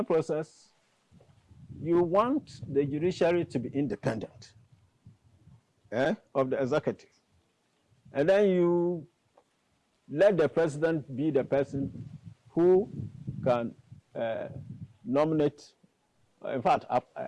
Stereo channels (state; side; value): identical; both; correlation 1.00